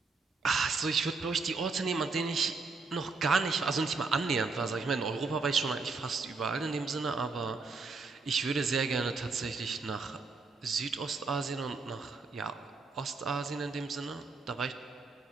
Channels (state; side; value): quieter; left; 4.2 dB